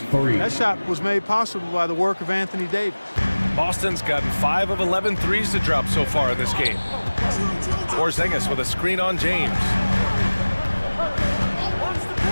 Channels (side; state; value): both; inverted; correlation -1.00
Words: That shot was made possible by the work of Anthony Davis. Boston's gotten 5 of 11 threes to drop so far in this game. Porzingis with a screen on James.